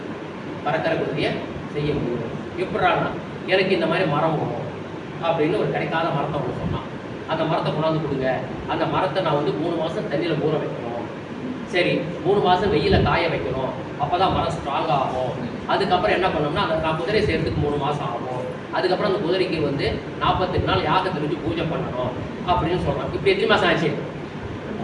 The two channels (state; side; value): identical; both; correlation 1.00